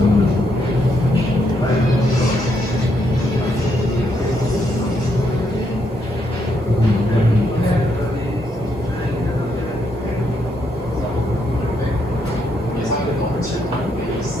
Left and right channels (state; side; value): normal; both; correlation 0.76